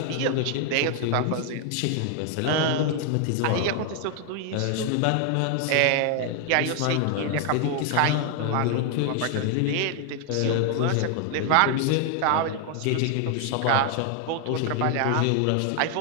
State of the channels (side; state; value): both; different; correlation 0.00